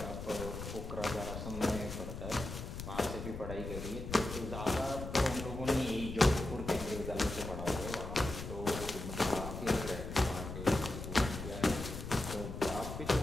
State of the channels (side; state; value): left; noise; rumble, 7 dB below the sound